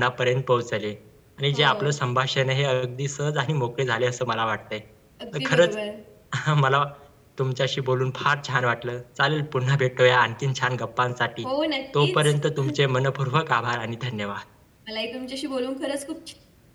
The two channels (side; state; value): both; identical; correlation 1.00